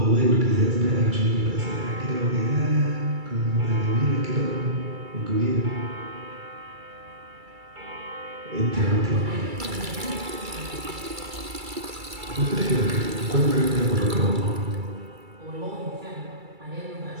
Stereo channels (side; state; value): left; late; 2.3 ms